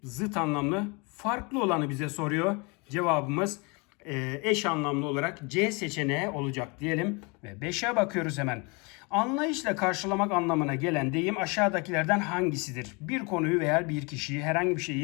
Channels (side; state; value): right; quieter; 29.6 dB